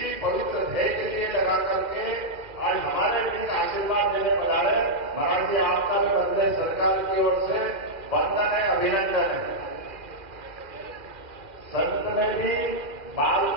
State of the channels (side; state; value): left; late; 2.1 ms